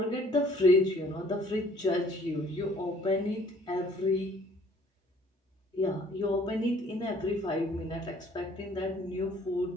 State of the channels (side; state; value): both; normal; correlation 0.57